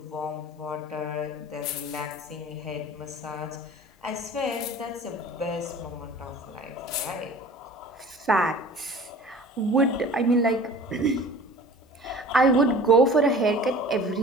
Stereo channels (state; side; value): normal; both; correlation 0.44